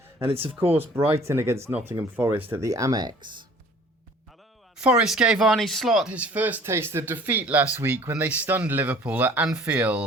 and it's of course Brighton against Nottingham Forest at the Amex. Forest gave Arne Slot his first taste of defeat last week when they stunned Liverpool at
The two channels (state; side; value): normal; both; correlation 0.51